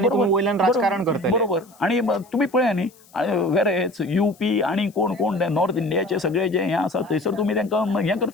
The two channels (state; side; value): noise; left; hiss, 28 dB below the sound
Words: तुमी वयल्यान राजकारण करतले, बरोबर. आनी तुमी पळया न्ही, वेरेज यूपी आनी कोण नॉर्थ इंडियाचे सगळे जे हें आसा थंयसर तुमी तांकां हें